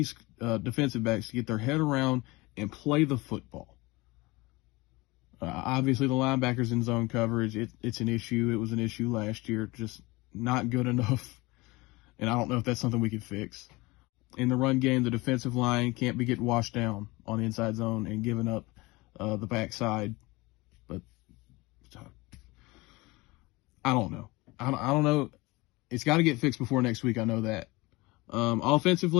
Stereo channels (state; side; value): quieter; right; 22.7 dB